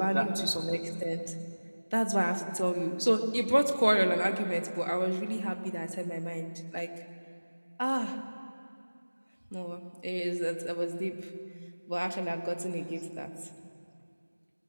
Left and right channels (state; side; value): inverted; both; correlation -1.00